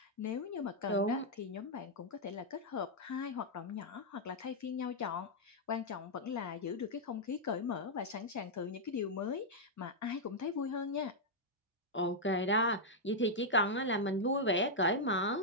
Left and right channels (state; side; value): normal; both; correlation -0.04